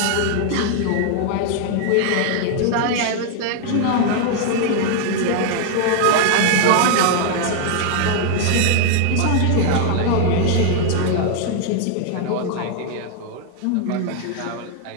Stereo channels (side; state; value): both; different; correlation 0.00